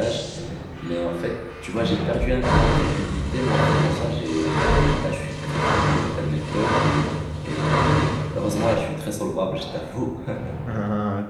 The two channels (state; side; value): identical; both; correlation 1.00